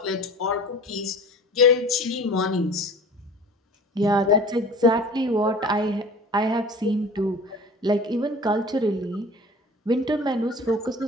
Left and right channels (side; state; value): both; normal; correlation 0.41